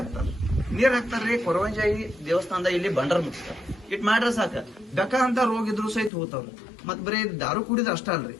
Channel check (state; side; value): drops out; right; at 6.1 s